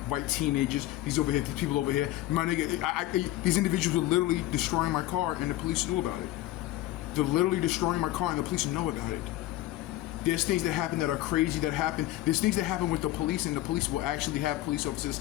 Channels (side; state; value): right; quieter; 15.6 dB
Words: white teenagers. These over here, these people over here. My nigga, these individuals were literally destroying my car, and the police knew about it. They're literally destroying my car, and the police know about it. There's things that happen that are crazy that happen. There's things that happen with the police, and the police will actually have police officers